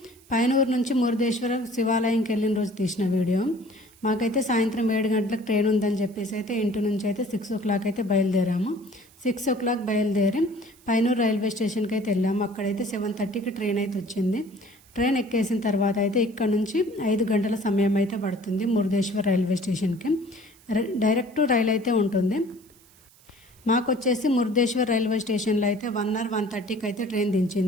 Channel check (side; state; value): right; noise; hiss, 28 dB below the sound